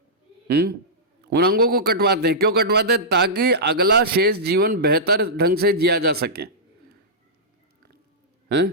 उन अंगों को कटवाते हैं। क्यों कटवाते हैं? ताकि अगला शेष जीवन बेहतर ढंग से जिया जा सके।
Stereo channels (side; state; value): both; normal; correlation -0.14